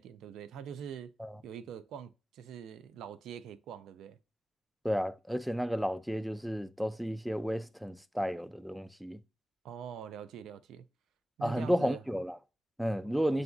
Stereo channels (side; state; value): both; normal; correlation 0.96